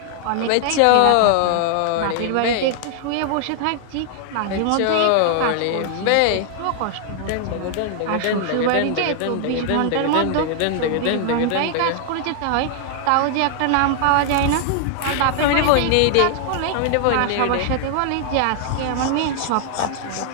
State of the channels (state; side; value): different; both; correlation 0.00